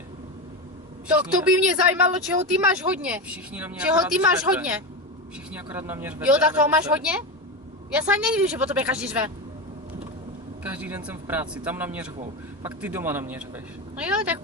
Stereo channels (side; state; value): both; normal; correlation 0.17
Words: To by mě zajímalo, čeho ty máš hodně. Všichni na mě Čeho akorát ty máš řvete. hodně? Všichni akorát na mě řvete. Jo, tak a toho máš nebudete. hodně? Já se ani nedivím, že po tobě každý řve. Každý den jsem v práci, tam na mě řvou. Pak ty doma na mě řveš. No jo, tak